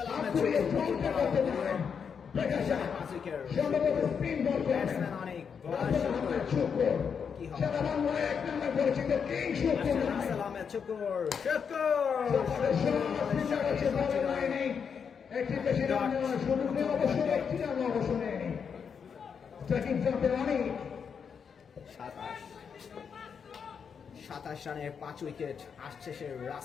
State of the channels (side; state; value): right; quieter; 6.6 dB